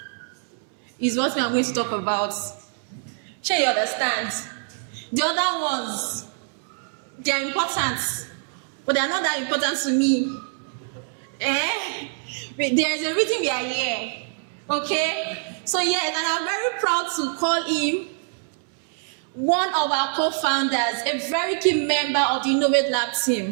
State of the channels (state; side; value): silent; left; 62 dB below the other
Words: is what we are going to talk about. Sure, you understand? The other ones, they are important, but they are not that important to me. There is a reason we are here. Okay? So yes, and I'm very proud to call him one of our co-founders, a very key member of the Ennovate Lab